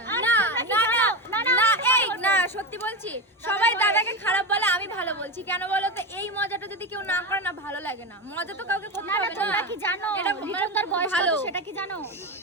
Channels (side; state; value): both; normal; correlation 0.18